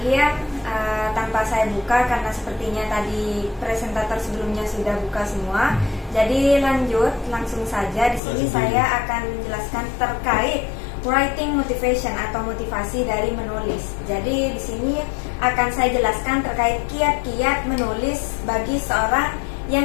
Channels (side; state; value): right; drops out; at 8.2 s